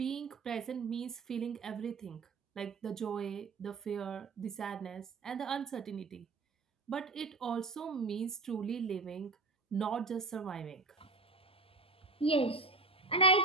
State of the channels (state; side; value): quieter; left; 3.9 dB